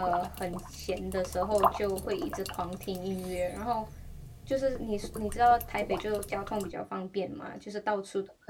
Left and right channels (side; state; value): both; identical; correlation 1.00